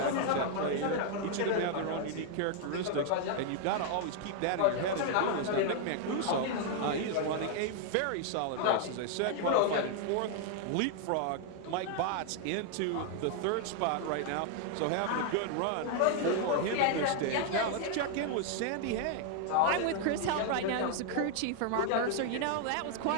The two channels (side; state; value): both; different; correlation 0.00